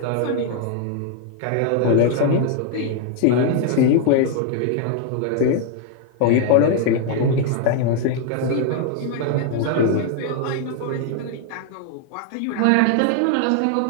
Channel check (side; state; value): both; different; correlation 0.00